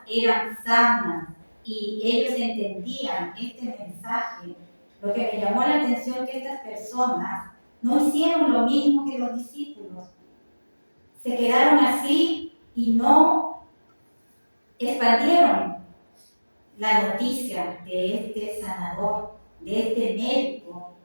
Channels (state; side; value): inverted; both; correlation -1.00